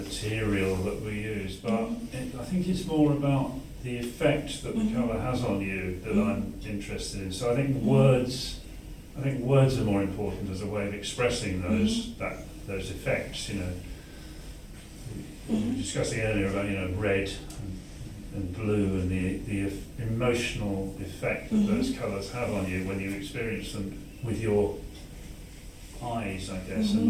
that we use, but I think it's more about the effect that the colour has on you that I'm interested in. So I think words are more important as a way of expressing those effects. We were discussing earlier about red and blue and the emotional effect that those colours have on you when you experience them with your eyes, I guess,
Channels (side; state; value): both; identical; correlation 1.00